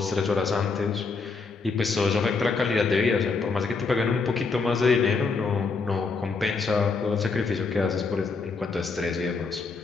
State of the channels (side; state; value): right; quieter; 4.5 dB